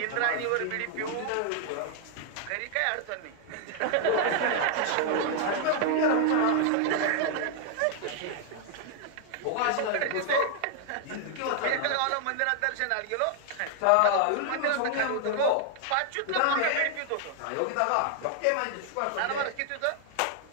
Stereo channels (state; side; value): different; both; correlation 0.00